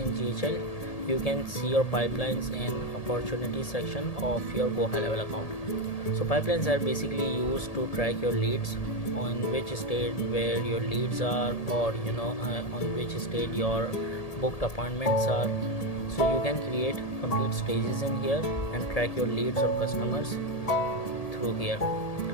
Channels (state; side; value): late; right; 1.8 ms